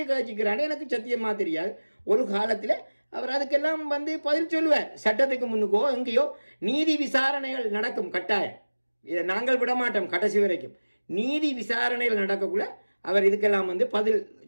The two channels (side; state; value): both; inverted; correlation -1.00